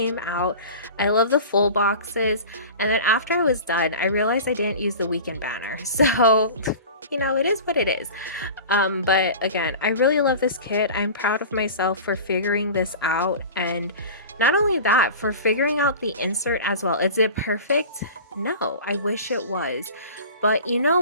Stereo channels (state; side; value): inverted; both; correlation -0.36